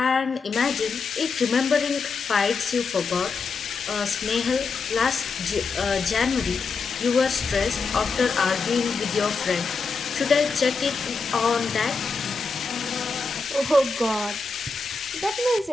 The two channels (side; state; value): right; quieter; 4.6 dB